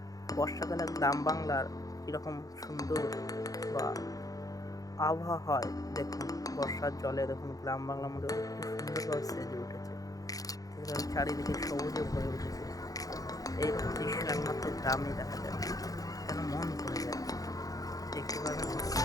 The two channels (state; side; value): late; right; 0.17 ms